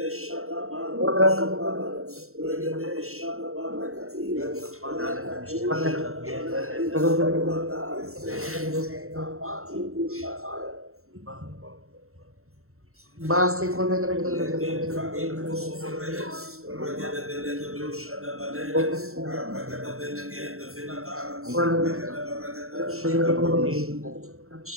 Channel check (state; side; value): late; left; 0.63 ms